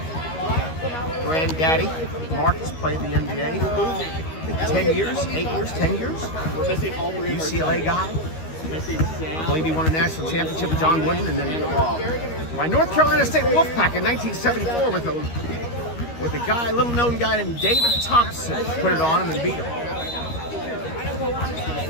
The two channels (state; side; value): late; right; 13 ms